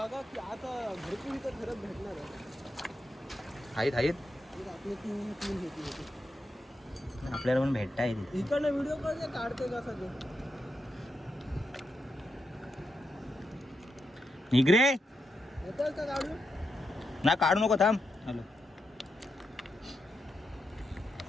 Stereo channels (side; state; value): both; normal; correlation 0.85